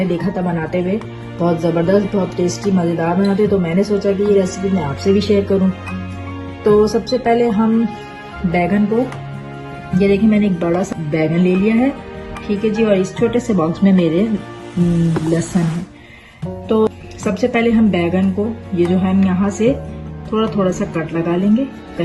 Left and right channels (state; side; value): identical; both; correlation 1.00